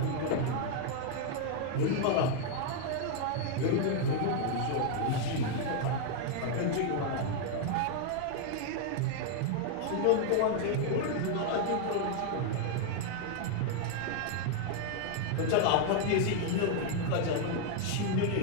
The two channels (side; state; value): both; different; correlation 0.00